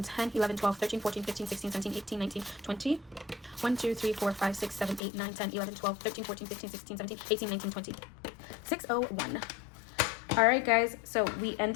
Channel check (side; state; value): right; drops out; at 5.0 s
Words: 10, 11, 12, 13, 14, 15, 16, 17, 18, 19, 20. 1, 2, 3, 4, 5, 6, 7, 8, 9, 10, 11, 12, 13, 14, 15, 16, 17, 18, 19, 20. 601. All right, guys. So we